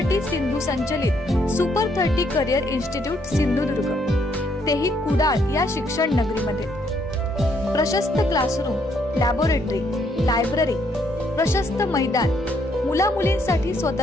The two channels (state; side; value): normal; both; correlation 0.71